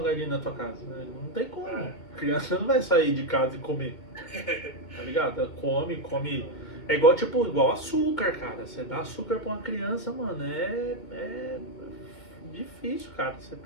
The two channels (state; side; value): late; right; 2.1 ms